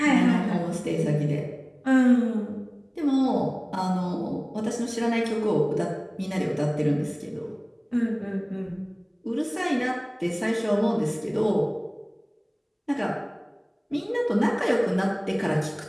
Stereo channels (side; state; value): both; identical; correlation 1.00